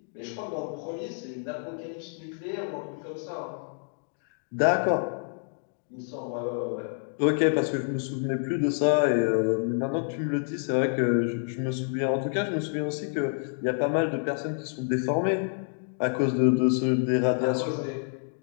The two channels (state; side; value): silent; right; 59 dB below the other